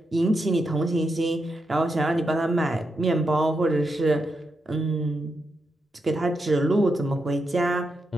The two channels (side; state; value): both; normal; correlation 0.85